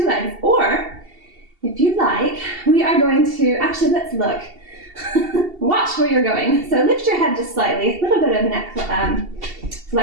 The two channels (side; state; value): left; late; 2.7 ms